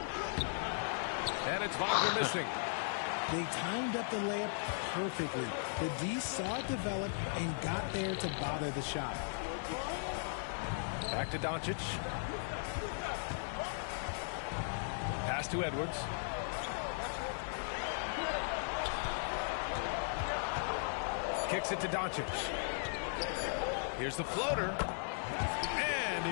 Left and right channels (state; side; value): silent; right; 53 dB below the other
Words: And it's Wagner missing. They timed up the layup perfectly. The D saw it develop and got there to bother the shot. Back to Doncic. Pass to Edwards. Kicks it to Doncic. Here's the floater. And